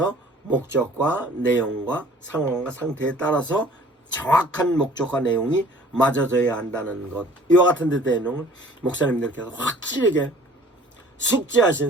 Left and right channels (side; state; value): both; normal; correlation 0.51